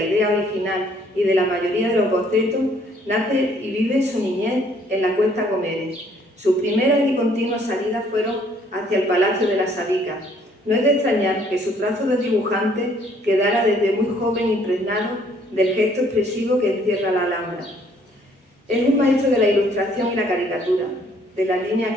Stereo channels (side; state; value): both; normal; correlation 0.63